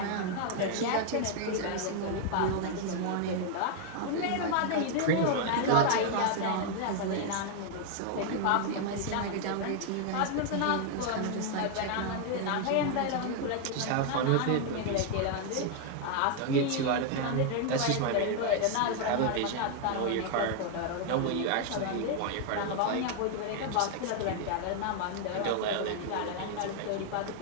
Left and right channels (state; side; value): different; both; correlation 0.00